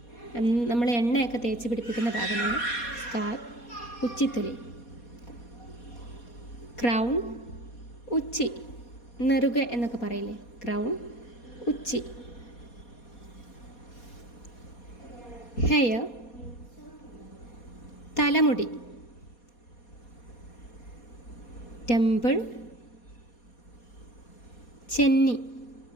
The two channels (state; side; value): late; right; 4.2 ms